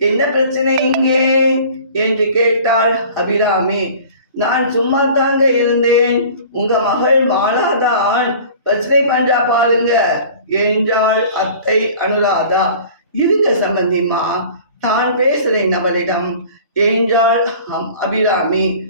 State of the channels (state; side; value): inverted; both; correlation -0.45